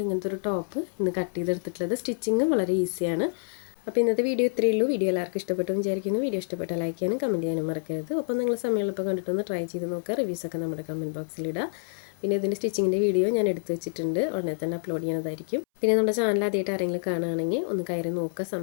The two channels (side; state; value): right; silent; 60 dB below the other